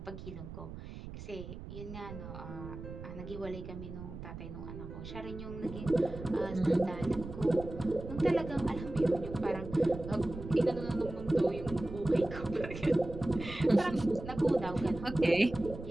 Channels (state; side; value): noise; right; rumble, 11 dB below the sound